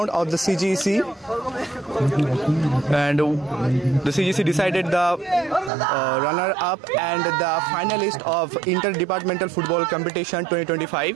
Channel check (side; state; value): left; drops out; at 5.7 s